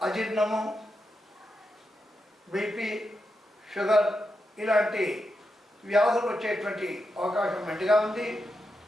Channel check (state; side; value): normal; both; correlation 0.86